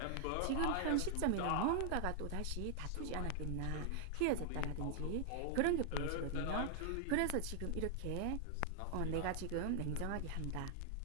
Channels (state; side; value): different; both; correlation 0.00